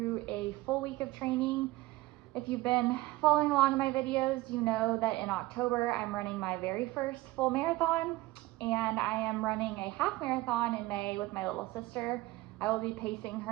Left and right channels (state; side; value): quieter; left; 18.9 dB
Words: a full week of training. If you've been following along in my videos, you know that in October I'm running my very first full marathon, and I am running a half marathon in May with my little sister. I will be pacing